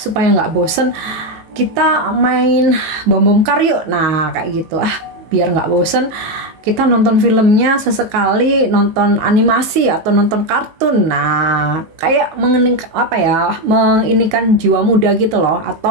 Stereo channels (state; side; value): late; left; 19 ms